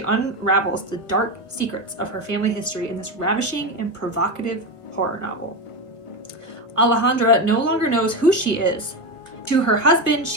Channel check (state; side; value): late; right; 1.3 ms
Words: unravels the dark secrets of her family history in this ravishing and provocative horror novel. Alejandra no longer knows who she is, To her husband,